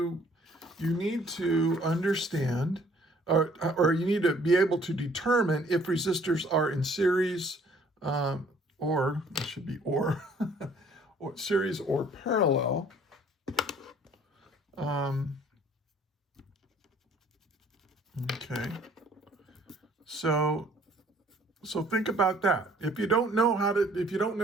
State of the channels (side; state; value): both; normal; correlation 0.58